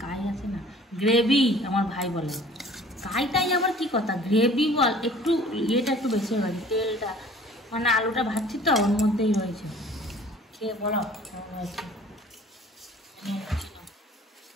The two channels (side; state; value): both; normal; correlation 0.50